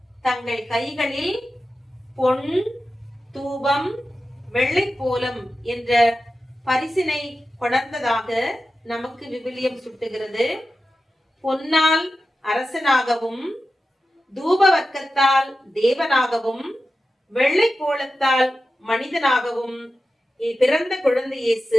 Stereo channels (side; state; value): both; normal; correlation 0.92